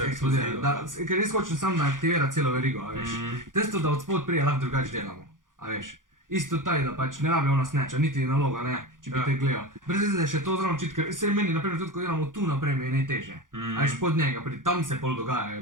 je eksplodira. eksplozivna. Ker res hočem samo, da aktivira celo verigo, a veš. Testo, da od spod prije lahko drugače delamo, a veš. Isto taj, da pač ne rabi ona snatcha, niti naloga, ne, če bi Ja. te gledal. Brez veze, da je še to zraven čit, ker se meni, naprimer, tudi ko delamo tu naprej, mi je najtežje. A veš, pod njega, tam se pol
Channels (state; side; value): late; left; 0.89 ms